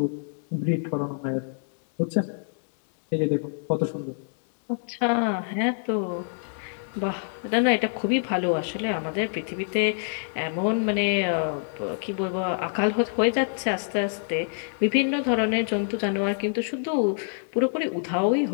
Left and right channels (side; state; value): right; silent; digital silence